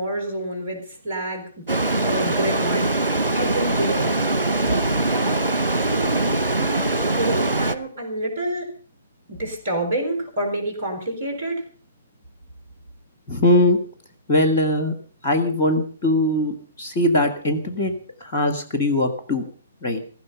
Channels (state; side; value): inverted; both; correlation -0.45